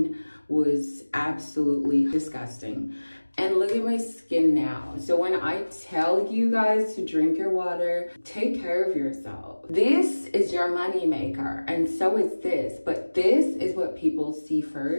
was absolutely disgusting. And look at my skin now. So when I tell you guys to drink your water, take care of yourself. This is your money maker, and so is this. But this is what people see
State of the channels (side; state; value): both; inverted; correlation -1.00